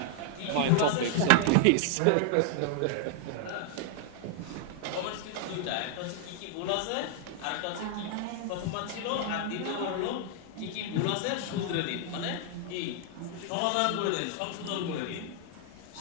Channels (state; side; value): different; both; correlation 0.00